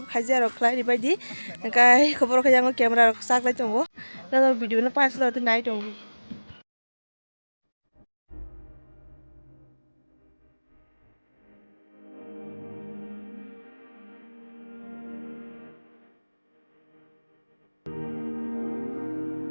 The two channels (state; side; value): inverted; both; correlation -1.00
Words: khaijak rok khlai baidi kai khobor khe jango camera rok saklai tongo na video no pas lo nai tongo.